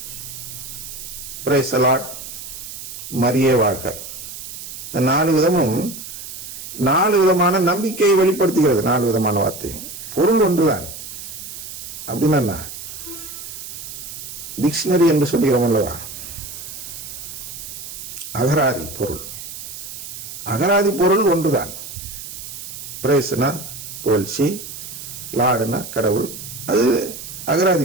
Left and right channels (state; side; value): noise; right; hiss, 10 dB below the sound